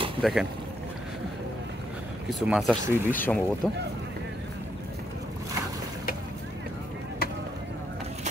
দেখেন, কিছু মাছ আসছে ইলিশ সম্ভবত।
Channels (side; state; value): both; normal; correlation 0.76